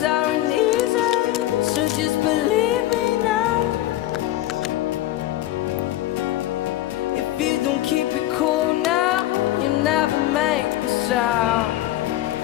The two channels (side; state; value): right; quieter; 14.9 dB